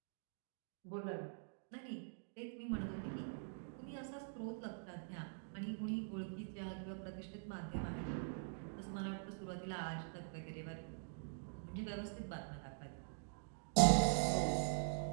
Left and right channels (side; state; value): left; silent; digital silence